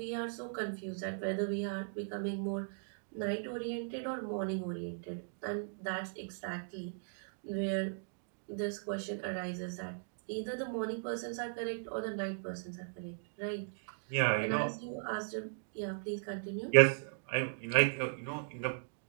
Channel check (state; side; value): silent; left; digital silence